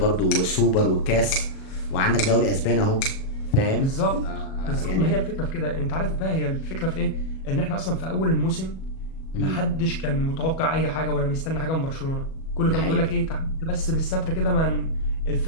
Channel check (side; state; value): right; late; 37 ms